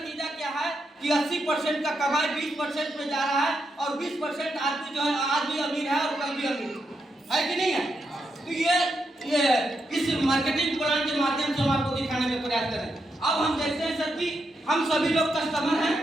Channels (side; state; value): both; normal; correlation 0.83